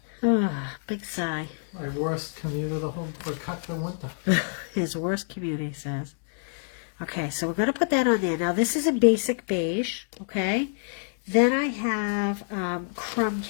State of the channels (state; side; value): silent; right; digital silence